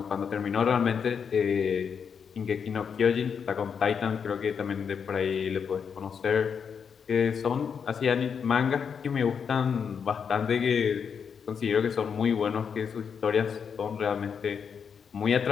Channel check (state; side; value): quieter; right; 6.7 dB